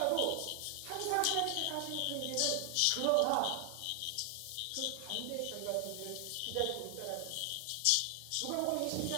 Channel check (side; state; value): both; different; correlation 0.00